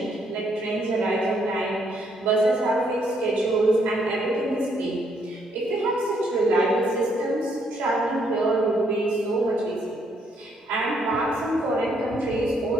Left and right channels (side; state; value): both; normal; correlation 0.71